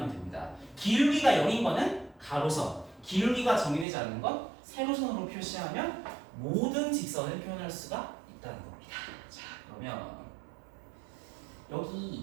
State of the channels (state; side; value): drops out; left; at 3.9 s